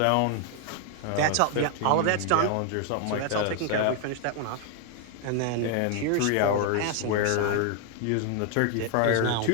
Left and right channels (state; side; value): different; both; correlation 0.00